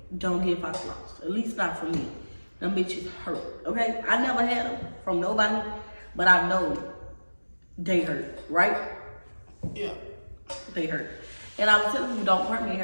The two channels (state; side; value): inverted; both; correlation -1.00